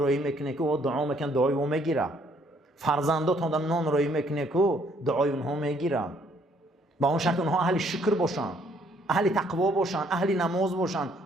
میکنه که دعا میکن، دعای او میگیره. فرزنداتون در نان روی میکنه که دعای اونها میگیره. با اون شرط اونها اهل شکر باشن، اهل تقوا باشن، اهل نماز باشن،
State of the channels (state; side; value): normal; both; correlation 0.65